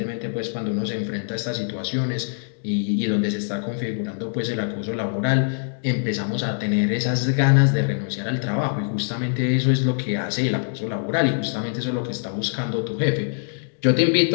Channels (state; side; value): silent; right; digital silence